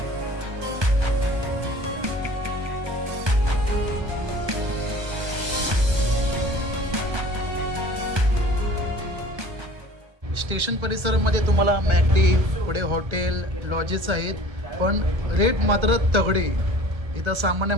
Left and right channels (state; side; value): late; left; 1.3 ms